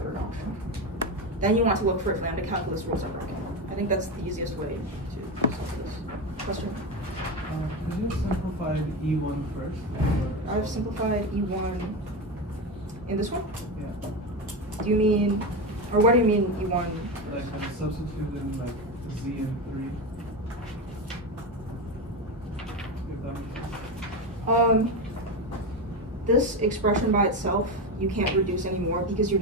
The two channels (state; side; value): normal; both; correlation 0.17